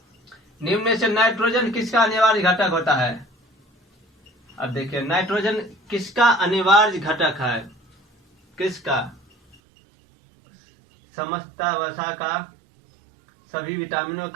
निम्न में से नाइट्रोजन किसका अनिवार्य घटक होता है? अब देखिए, नाइट्रोजन किसका अनिवार्य घटक है? किसका? समस्त वसा का, सभी विटामिनों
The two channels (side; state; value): left; drops out; at 9.6 s